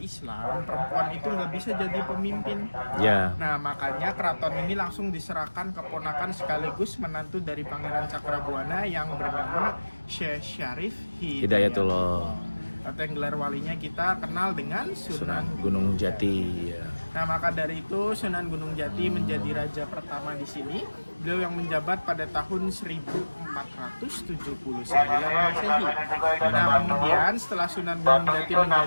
perempuan itu nggak bisa jadi pemimpin. Ya. Nah, makanya keraton ini langsung diserahkan keponakan sekaligus menantu dari Pangeran Cakrabuana yang bernama Syekh Syarif Hidayatullah. atau yang gelar walinya kita kenal dengan Sunan Sunan. Gunung Jati. Ya. Nah, maka dari itu Sunan Gunung Jati menjadi raja pertama di sini. Beliau yang menjabat pada tahun 1479 Masehi. Nah, kemudian setelah Sunan Gunung Jati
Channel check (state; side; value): inverted; both; correlation -1.00